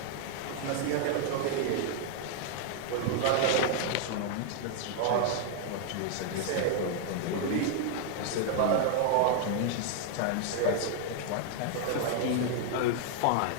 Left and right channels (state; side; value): different; both; correlation 0.00